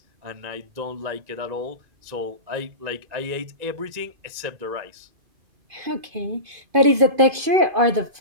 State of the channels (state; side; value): late; left; 2.5 ms